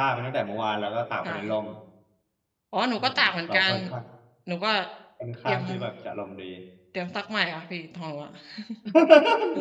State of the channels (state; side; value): identical; both; correlation 1.00